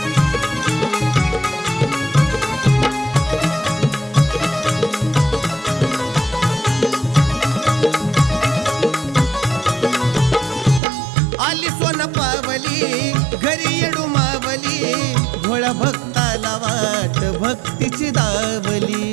आली सोन पावली घरी येडू मावली, भोळा भक्ताला वाट भक्तीची दावली.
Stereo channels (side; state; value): left; drops out; at 10.8 s